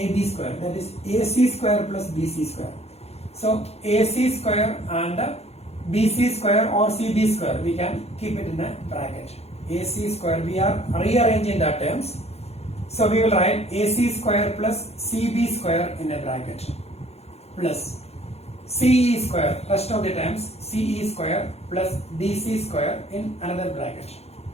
square, that is AC square plus BC square. So AC square and BC square or CB square, we can keep it in a bracket. AC square, we are rearranging the terms. So we will write AC square plus CB square in a bracket plus CE square, rest of the terms CE square plus DC square in another bracket.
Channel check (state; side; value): late; right; 0.30 ms